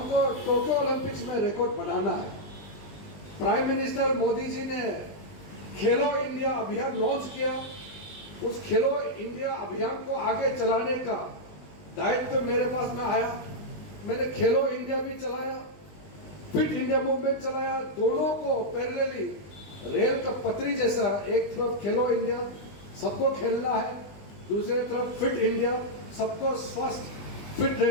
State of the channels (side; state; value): right; late; 20 ms